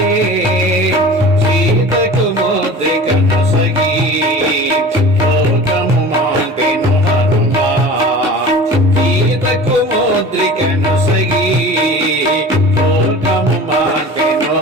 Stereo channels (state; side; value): normal; both; correlation 0.39